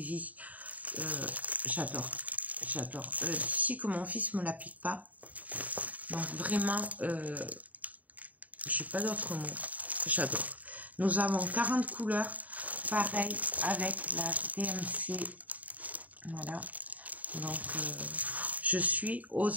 J'adore. J'adore. D'ici que mon fils me la pique pas. Donc vraiment, j'ai pas d'autre mot. J'adore. Nous avons 40 couleurs. Pareil avec la DMC. Voilà. Donc, je suis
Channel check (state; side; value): late; left; 0.074 ms